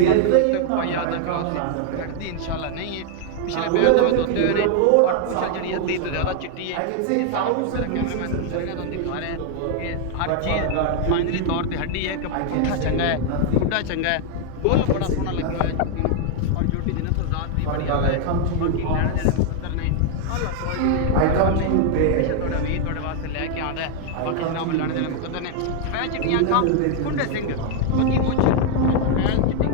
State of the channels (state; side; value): different; both; correlation 0.00